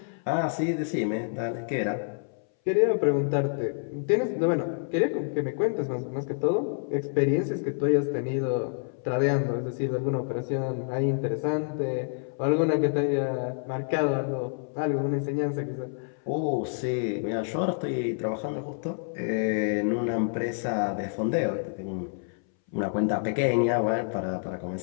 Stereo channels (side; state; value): right; silent; 59 dB below the other